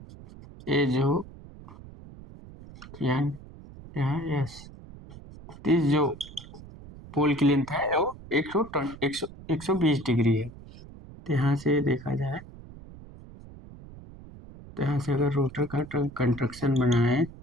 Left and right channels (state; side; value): noise; right; rumble, 17 dB below the sound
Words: ये जो यहाँ यस, इस जो पोल की लेंथ है वो 120 डिग्री है। तो यहाँ से देखा जाए, तो यहाँ से अगर रोटर का कंस्ट्रक्शन बनाए,